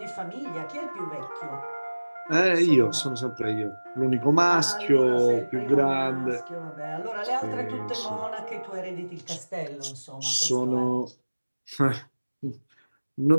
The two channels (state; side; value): inverted; both; correlation -1.00